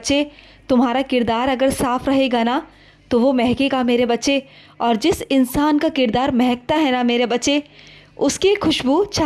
तुम्हारा किरदार अगर साफ रहेगा ना तो वो महकेगा मेरे बच्चे। और जिस इंसान का किरदार महकता है ना मेरे बच्चे, उसकी खुशबू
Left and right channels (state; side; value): identical; both; correlation 1.00